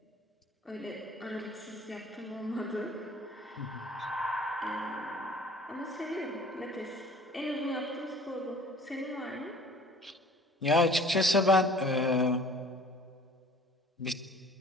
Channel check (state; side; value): normal; both; correlation 0.49